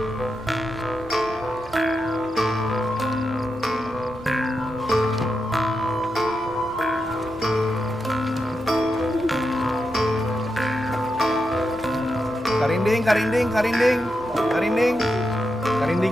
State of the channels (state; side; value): normal; both; correlation 0.87